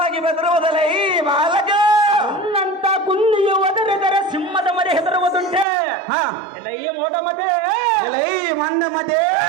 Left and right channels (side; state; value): left; drops out; at 5.7 s